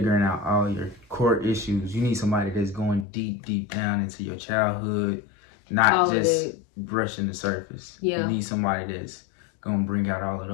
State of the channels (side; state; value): right; drops out; at 3.1 s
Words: out all your core issues. You need somebody that's going deep down into your childhood, not all just brushing the surface. Yeah, you need somebody that's gonna bring out all of